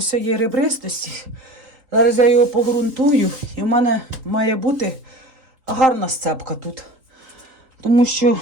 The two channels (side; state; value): left; late; 3.8 ms